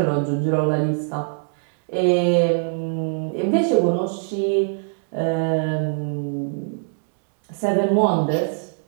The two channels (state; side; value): silent; left; digital silence